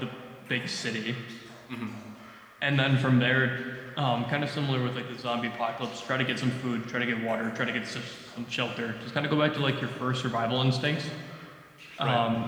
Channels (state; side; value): identical; both; correlation 1.00